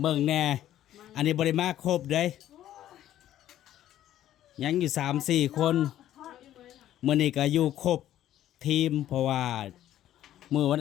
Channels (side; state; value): right; quieter; 12.4 dB